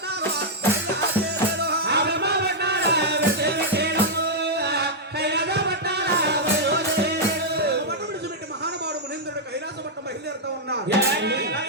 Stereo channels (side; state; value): both; normal; correlation -0.05